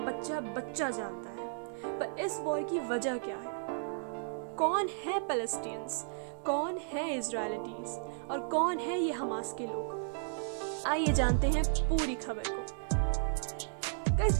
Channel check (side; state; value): left; silent; digital silence